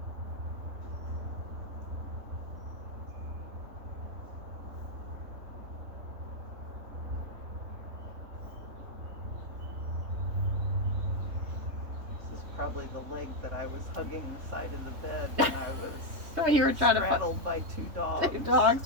Probably the leg that I was hugging the side of the bed when I was When you were trying straddled by 2 dogs. 2 dogs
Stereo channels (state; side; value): late; left; 3.2 ms